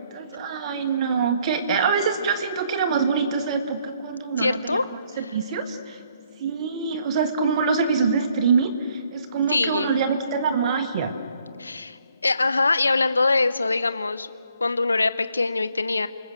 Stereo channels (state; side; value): inverted; both; correlation -0.68